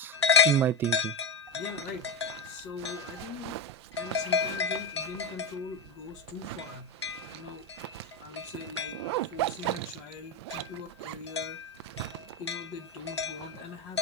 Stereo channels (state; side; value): normal; both; correlation 0.13